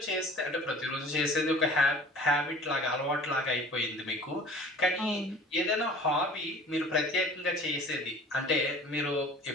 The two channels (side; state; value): both; normal; correlation 0.45